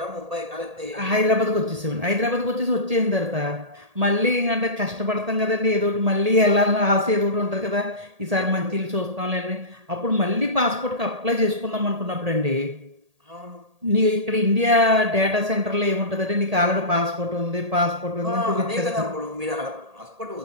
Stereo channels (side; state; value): left; late; 1.8 ms